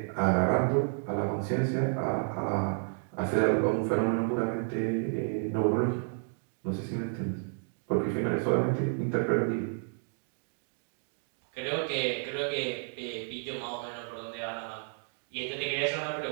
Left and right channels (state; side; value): silent; left; 57 dB below the other